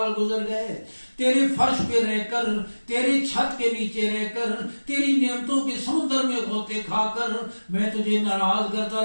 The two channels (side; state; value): both; inverted; correlation -1.00